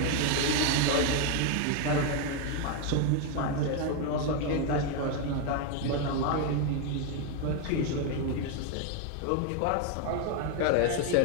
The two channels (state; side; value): different; both; correlation 0.01